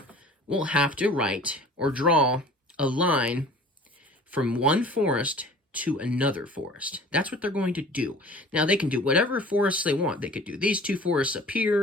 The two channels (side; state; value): both; normal; correlation 0.45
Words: will have to write or draw a line from one forest to another forest. That's what they're going to do. Now, they can do whatever forests they want. They could do these 2 forests up